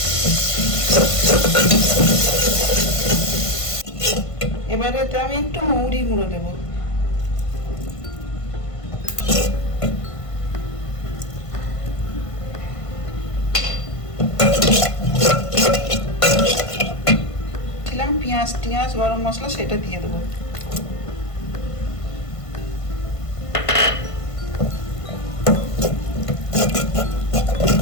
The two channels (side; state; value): right; late; 1.5 ms